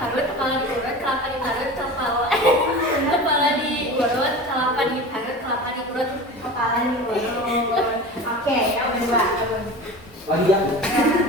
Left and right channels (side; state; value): both; normal; correlation 0.33